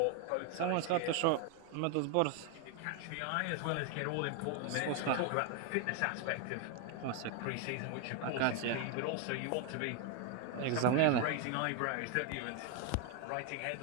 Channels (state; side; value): different; both; correlation 0.01